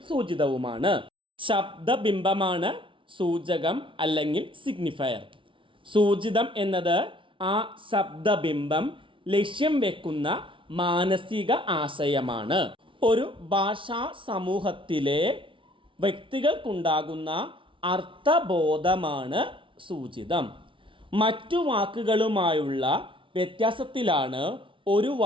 സൂചിതവുമാണ്. ശബ്ദബിംബമാണ് സൂചകം അല്ലെങ്കിൽ സിഗ്നിഫയർ. സൂചിതം എന്നത് ആ ശബ്ദബിംബം ലക്ഷ്യം വെക്കുന്ന മാനസിക ആശയമാണ്. ഒരു ഭാഷാ സമൂഹത്തിലെ വ്യക്തികൾക്കുണ്ടാകുന്ന അർത്ഥബോധമാണ് സൂചിതം. മറ്റു വാക്കുകളുമായുള്ള വ്യത്യാസത്തിലാണ് ഒരു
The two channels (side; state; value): left; late; 0.25 ms